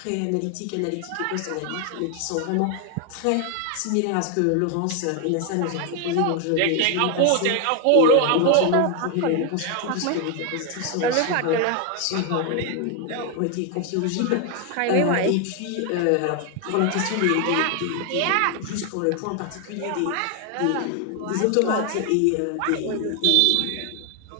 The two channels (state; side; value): different; both; correlation 0.01